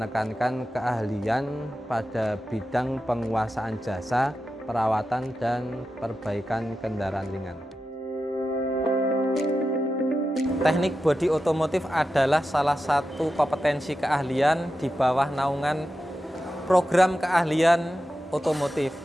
keahlian pada bidang penguasaan jasa, perawatan, dan perbaikan kendaraan ringan. Teknik bodi otomotif adalah salah satu kompetensi keahlian di bawah naungan program keahlian otomotif.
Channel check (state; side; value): normal; both; correlation 0.91